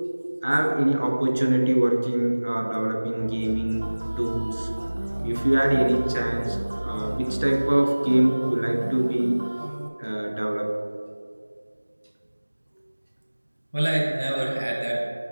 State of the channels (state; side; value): inverted; both; correlation -1.00